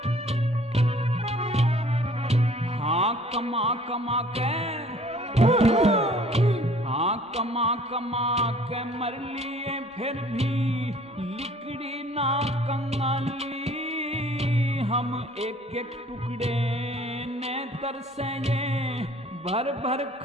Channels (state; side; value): normal; both; correlation 0.54